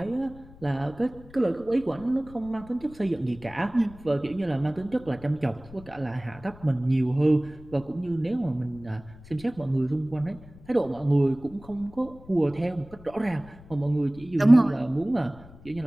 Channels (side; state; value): left; noise; rumble, 20 dB below the sound